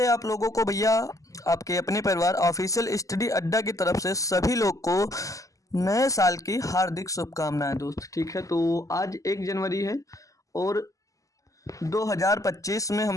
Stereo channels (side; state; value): right; late; 0.16 ms